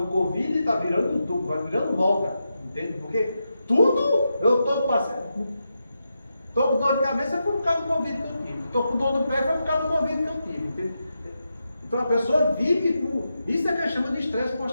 do Covid está virando moda, entende? Porque tudo eu estou passando. Estou com dor de cabeça foi por causa do Covid que eu tive. Estou com dor no pé foi por causa do Covid que eu tive. Entende? Então a pessoa vive com. Isso é que a gente chama de estresse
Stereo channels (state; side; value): inverted; both; correlation -0.87